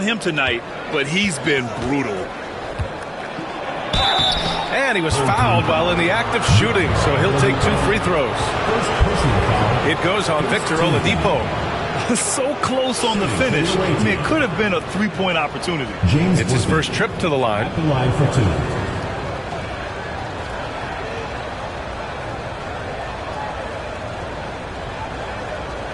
tonight, but he's been brutal. And he was fouled while in the act of shooting, so he'll take 2 free throws. It goes on Victor Oladipo. So close on the finish. I mean, it could have been a 3-point opportunity. It's his first trip to the line. The line for 2.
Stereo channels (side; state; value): both; identical; correlation 1.00